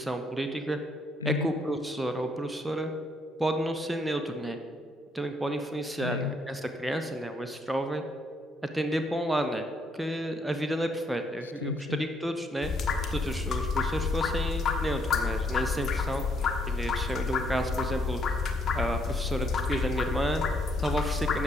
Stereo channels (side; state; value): both; normal; correlation 0.71